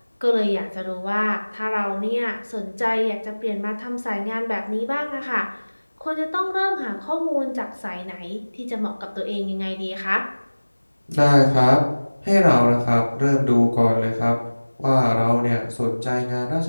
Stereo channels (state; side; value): inverted; both; correlation -1.00